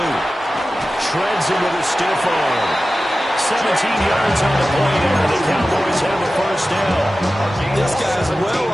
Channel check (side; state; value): both; normal; correlation 0.95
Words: Shreds him with a stiff arm. 17 yards on the play, and the Cowboys have a first down. This guy's well